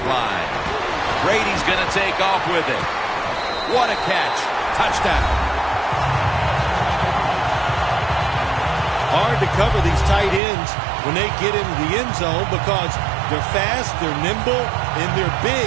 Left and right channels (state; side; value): drops out; left; at 10.4 s